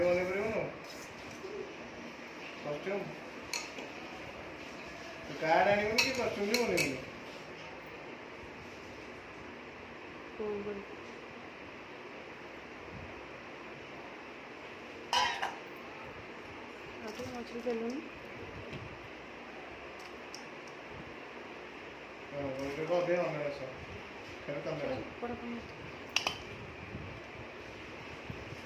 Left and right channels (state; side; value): identical; both; correlation 1.00